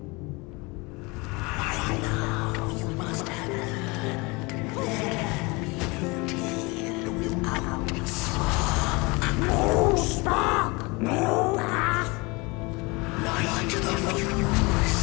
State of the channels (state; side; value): quieter; right; 26.1 dB